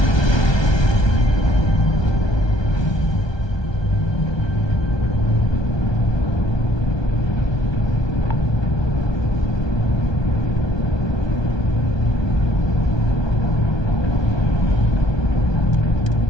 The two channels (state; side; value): late; right; 1.2 ms